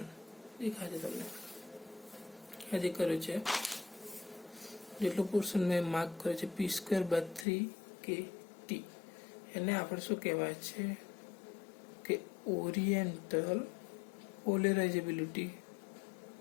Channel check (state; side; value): drops out; right; at 7.5 s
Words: દેખાય છે તમને. આજે કર્યો છે જેટલો પોર્શન મેં માર્ક કર્યો છે p² બાય 3kt. એને આપણે શું કહેવાય છે કે ઓરિએન્ટલ પોલરાઇઝેબિલિટી.